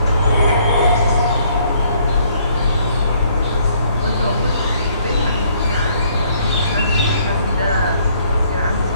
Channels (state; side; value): inverted; both; correlation -0.64